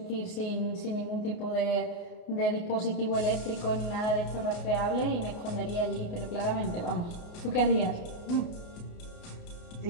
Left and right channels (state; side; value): late; right; 28 ms